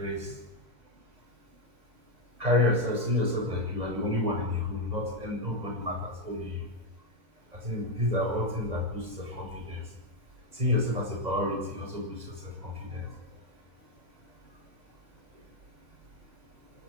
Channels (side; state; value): left; late; 2.0 ms